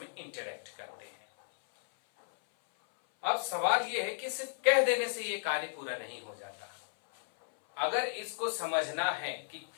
इंटरेक्ट करते हैं। अब सवाल यह है कि सिर्फ कह देने से ये कार्य पूरा नहीं हो जाता। अगर इसको समझना है कि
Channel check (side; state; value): right; silent; 55 dB below the other